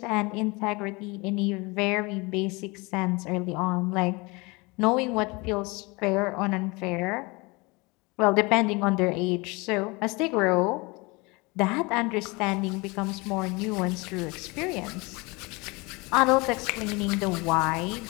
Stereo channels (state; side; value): quieter; right; 26.1 dB